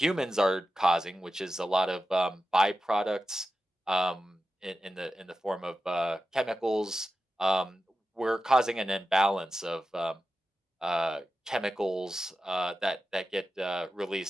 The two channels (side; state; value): both; normal; correlation 0.92